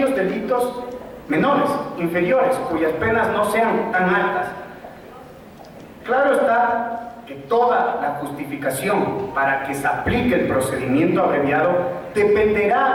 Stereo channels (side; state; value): both; identical; correlation 1.00